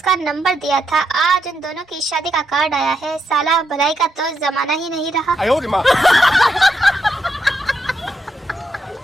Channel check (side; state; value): both; normal; correlation 0.81